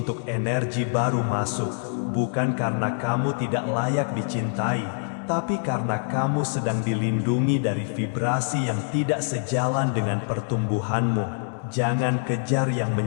energi baru masuk. Bukan karena kamu tidak layak dicintai, tapi karena kamu sedang dilindungi dari vibrasi yang tidak sejalan dengan pertumbuhanmu. Jangan kejar yang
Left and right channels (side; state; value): right; silent; digital silence